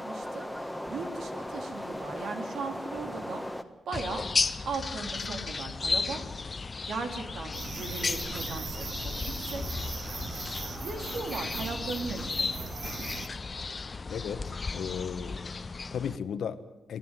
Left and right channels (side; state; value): both; normal; correlation 0.86